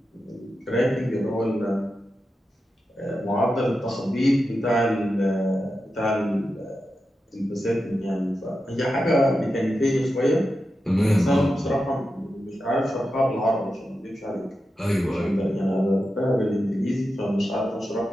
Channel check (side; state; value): both; normal; correlation 0.90